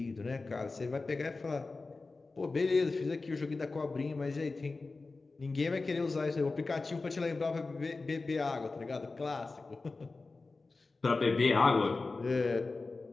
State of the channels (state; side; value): quieter; right; 3.7 dB